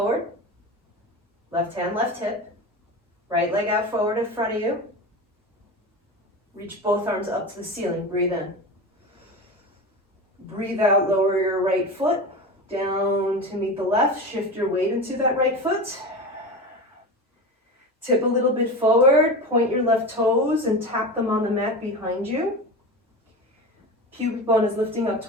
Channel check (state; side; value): normal; both; correlation 0.26